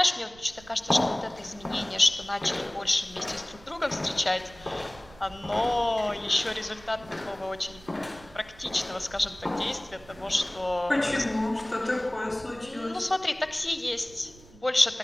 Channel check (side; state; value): right; noise; rumble, 22 dB below the sound